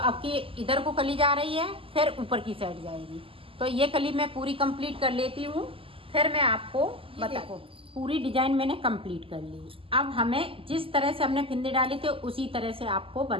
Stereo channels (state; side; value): late; left; 0.26 ms